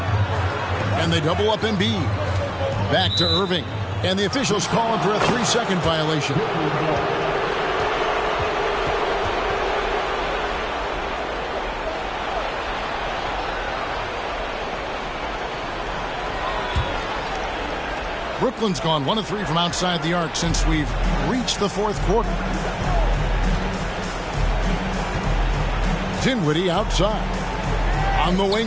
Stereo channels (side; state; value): both; identical; correlation 1.00